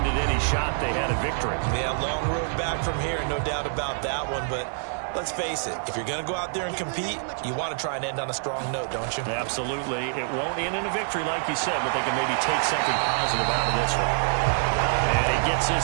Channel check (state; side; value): silent; left; digital silence